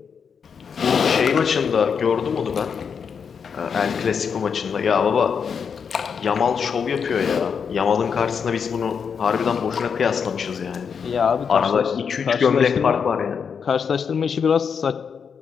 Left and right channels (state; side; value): quieter; right; 6.5 dB